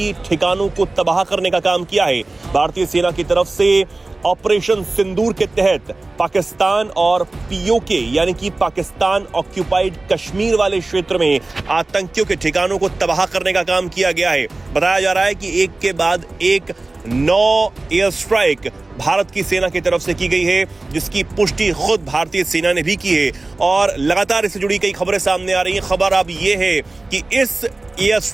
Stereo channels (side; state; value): left; quieter; 3.2 dB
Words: ठिकानों को तबाह करने का काम किया है। भारतीय सेना की तरफ से ऑपरेशन सिंदूर के तहत पाकिस्तान और पीओके यानी कि पाकिस्तान ऑक्यूपाइड कश्मीर वाले क्षेत्र में आतंकियों के ठिकानों को तबाह करने का काम किया गया है। बताया जा रहा है कि एक के बाद एक 9 एयर स्ट्राइक भारत की सेना की तरफ से की गई है, जिसकी पुष्टि खुद भारतीय सेना ने भी की है और लगातार इससे जुड़ी कई खबरें सामने आ रही हैं। खबर अब यह है कि इस एयर